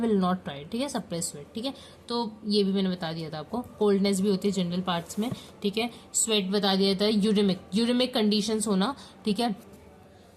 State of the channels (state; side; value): identical; both; correlation 1.00